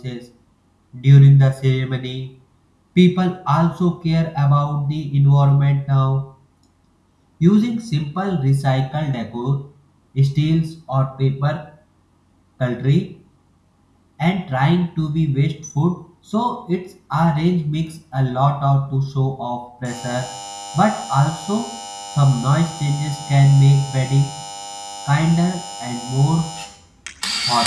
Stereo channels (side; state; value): both; identical; correlation 1.00